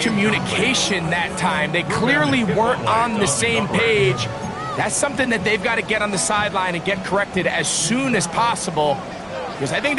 that time. They clearly weren't on the same page. That's something that they've got to get on the sideline and get corrected as soon as possible, because I think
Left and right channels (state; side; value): identical; both; correlation 1.00